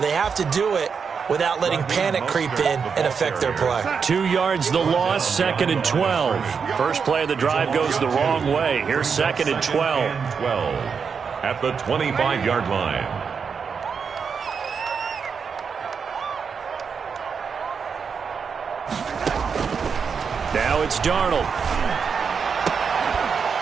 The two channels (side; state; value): left; quieter; 6.0 dB